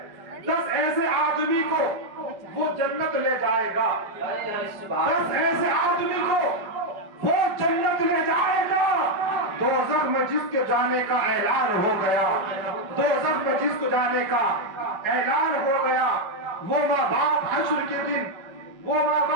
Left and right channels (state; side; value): late; left; 5.2 ms